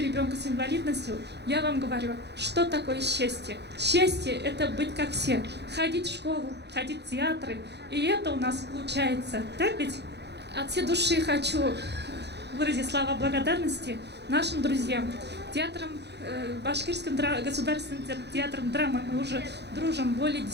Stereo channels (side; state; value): left; late; 0.49 ms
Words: ребенка с инвалидностью, я вам говорю, что такое счастье. Счастье – это быть как все. Ходить в школу, ходить в театры. И это у нас получается. Так ведь? От всей души хочу выразить слова благодарности нашим друзьям. Башкирским государственным театром драмы мы уже дружим более